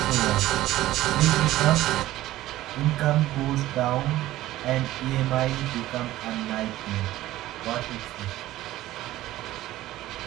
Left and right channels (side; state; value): left; quieter; 15.4 dB